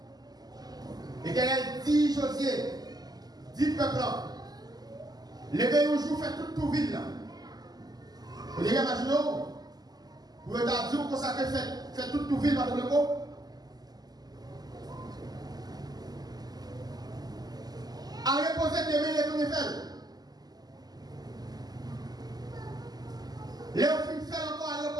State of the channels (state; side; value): late; left; 0.19 ms